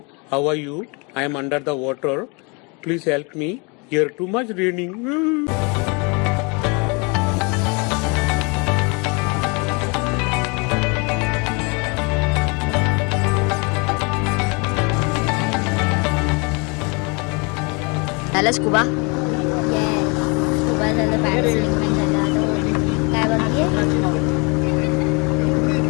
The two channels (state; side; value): quieter; right; 30.9 dB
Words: how are you? I am under the water. Please help me. Here too much raining. झालं स्कुबा? स्कुबा झालं, पॅरासेलिंग पण झालं. आता काय बाकी आहे?